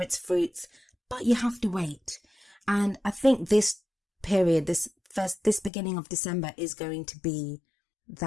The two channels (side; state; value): right; drops out; at 5.7 s